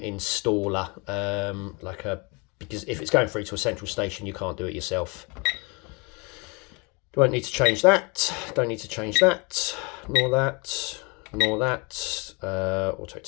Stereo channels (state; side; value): quieter; right; 30.1 dB